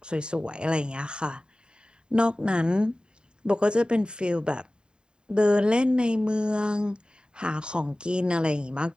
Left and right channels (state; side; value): late; left; 0.049 ms